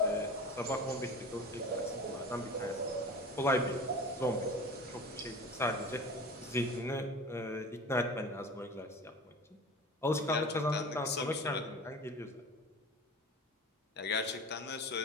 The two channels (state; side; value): normal; both; correlation 0.36